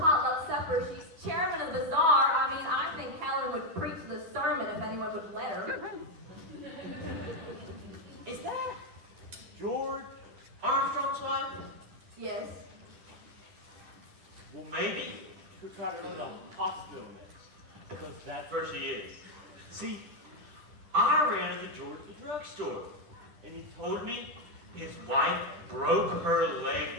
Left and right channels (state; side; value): late; left; 10 ms